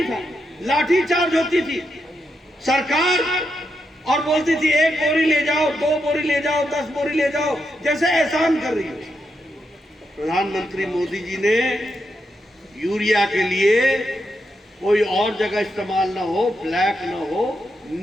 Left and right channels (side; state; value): both; normal; correlation 0.83